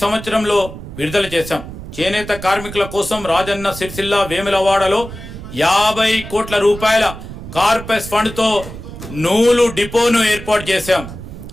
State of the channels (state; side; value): noise; right; rumble, 12 dB below the sound